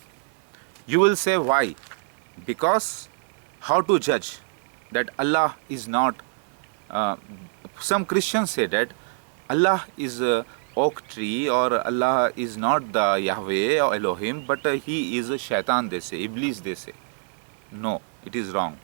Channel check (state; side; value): silent; left; digital silence